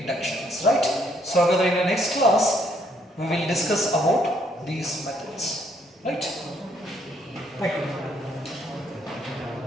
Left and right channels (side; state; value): both; normal; correlation 0.69